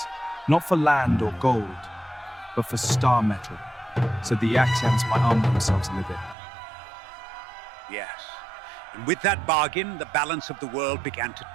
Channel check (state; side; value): drops out; left; at 6.4 s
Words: not for land or gold, but for star metal, so the Axians might arm themselves a little. Yes. And with that bargain, the balance of the world began to